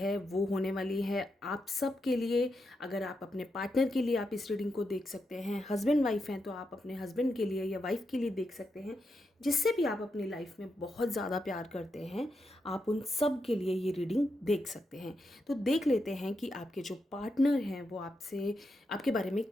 वो होने वाली है आप सब के लिए। अगर आप अपने पार्टनर के लिए आप इस रीडिंग को देख सकते हैं, हस्बैंड वाइफ हैं तो आप अपने हस्बैंड के लिए या वाइफ के लिए देख सकते हैं, जिससे भी आप अपनी लाइफ में बहुत ज़्यादा प्यार करते हैं, आप उन सब के लिए ये रीडिंग देख सकते हैं। तो देख लेते हैं कि आपके जो पार्टनर हैं वो आपसे, आपके बारे में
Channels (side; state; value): both; normal; correlation 0.84